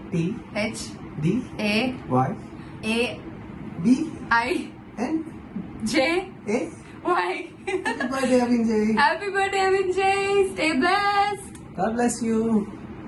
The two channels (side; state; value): both; identical; correlation 1.00